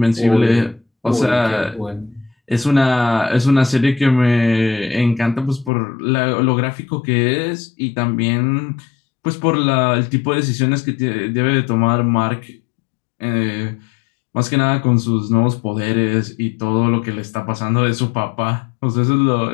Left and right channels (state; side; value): drops out; right; at 5.7 s